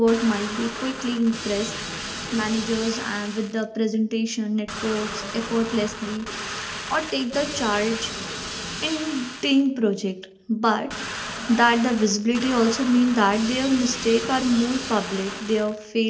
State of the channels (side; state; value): both; identical; correlation 1.00